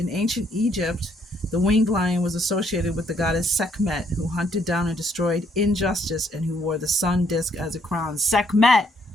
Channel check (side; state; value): both; normal; correlation 0.69